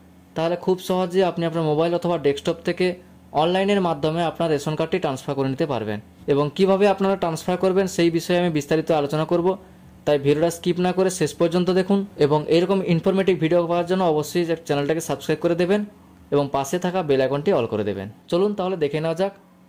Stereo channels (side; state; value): both; identical; correlation 1.00